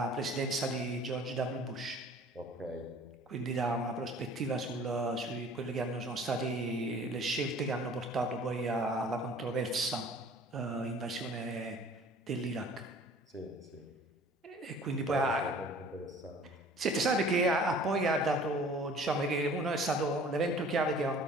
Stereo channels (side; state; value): both; normal; correlation 0.49